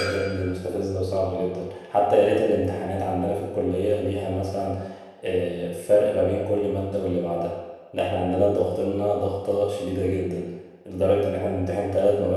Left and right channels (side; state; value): both; identical; correlation 1.00